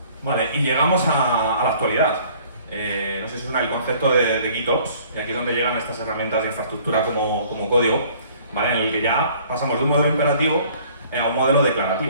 Vale, y llegamos a la actualidad. No sé si suena el concepto de GitOps, y aquí es donde llegan estas herramientas de infraestructura como código, ¿vale? En el que ya pasamos de un modelo imperativo a un modelo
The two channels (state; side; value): inverted; both; correlation -0.55